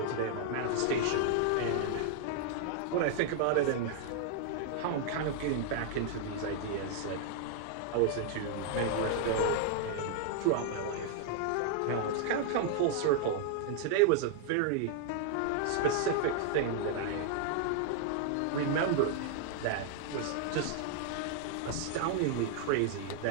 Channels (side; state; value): both; different; correlation -0.01